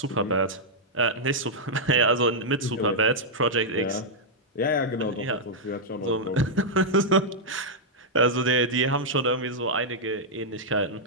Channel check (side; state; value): both; normal; correlation -0.05